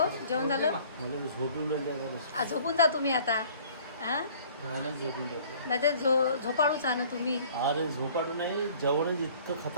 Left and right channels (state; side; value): inverted; both; correlation -0.52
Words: जेवण झालं. झोपून जा तुम्ही आता. नाही ते झोपाडूच ना तुम्ही. अरे झोपाडू नाही, जेवणच इतकं